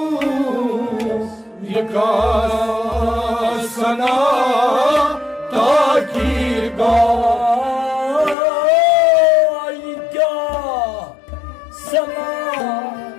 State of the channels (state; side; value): drops out; right; at 8.3 s